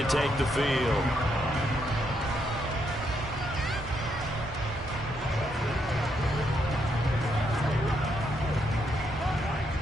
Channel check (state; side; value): normal; both; correlation 0.77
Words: take the field.